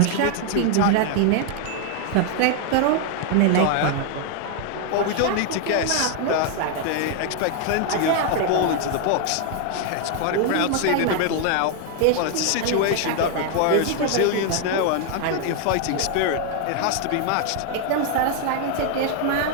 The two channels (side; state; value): both; different; correlation 0.00